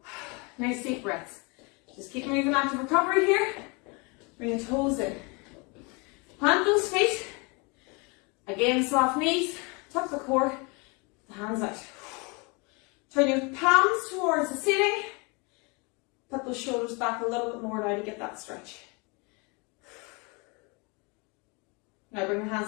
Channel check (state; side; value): quieter; right; 30.0 dB